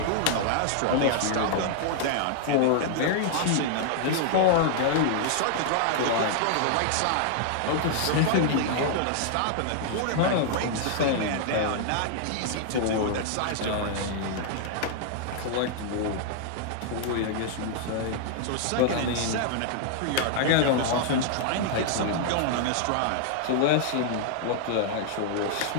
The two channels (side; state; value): both; different; correlation -0.01